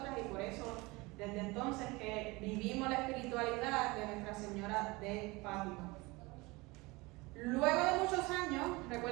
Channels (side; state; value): left; quieter; 23.6 dB